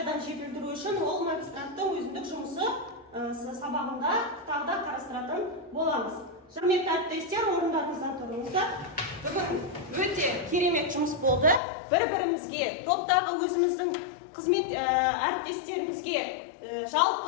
жетілдіру үшін ол магистранттың өзіндік жұмысы сабағында тағы да қарастыратын боламыз. Құрметті әріптестер, орындарыңыздан тұрыңыздар. Бүгін өте керемет жұмыс болды. Бір-бірімізге, топтағы өзіміздің қызмет әріптестерімізге,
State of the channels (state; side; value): drops out; right; at 11.6 s